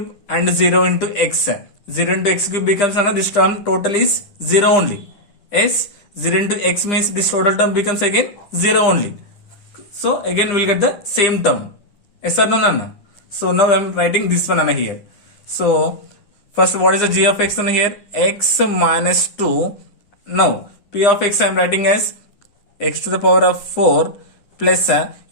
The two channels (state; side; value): late; right; 9.9 ms